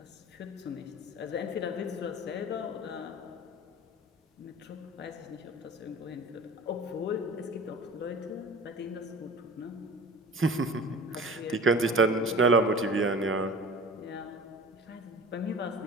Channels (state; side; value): normal; both; correlation 0.40